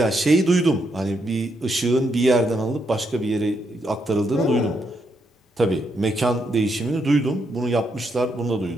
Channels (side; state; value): both; normal; correlation 0.78